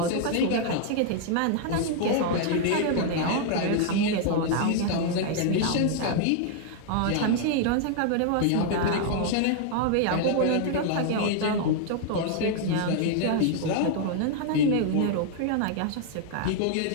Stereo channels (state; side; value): different; both; correlation 0.00